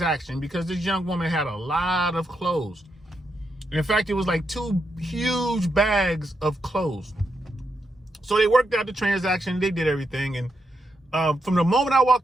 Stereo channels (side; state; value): both; normal; correlation 0.83